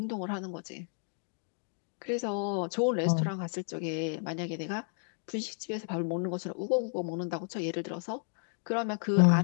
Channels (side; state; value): right; silent; 56 dB below the other